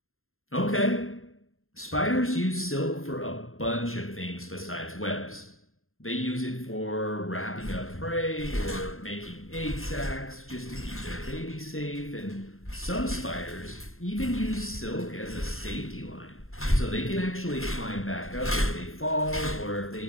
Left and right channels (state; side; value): late; right; 0.61 ms